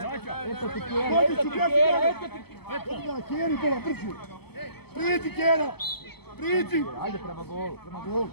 Eto ti Kjera, Dođi eto ću, ti bježi Kjera, gore. eto ti... Odigraj, Kjeri, bola, brže. Priđi, Kjera. Priđi. Ajde prema golu.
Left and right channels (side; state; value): right; late; 0.96 ms